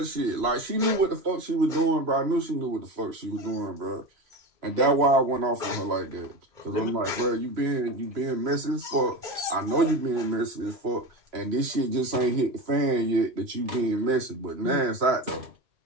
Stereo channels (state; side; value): late; left; 2.9 ms